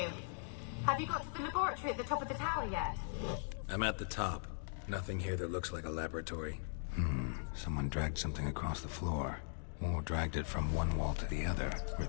Have you got to the laboratory at the top of the tower yet? I'm at the top. Nothing here that looks like a laboratory. Someone dragged something across the floor. Or dragged it from one wall to the other,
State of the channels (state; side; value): silent; right; digital silence